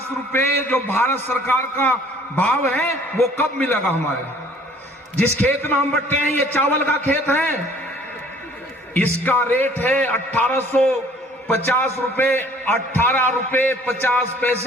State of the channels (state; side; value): normal; both; correlation 0.55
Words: रुपए जो भारत सरकार का भाव है वो कब मिलेगा हमारे। जिस खेत में हम बैठे हैं ये चावल का खेत है, इसका रेट है 1850 रुपए, 18 रुपए 50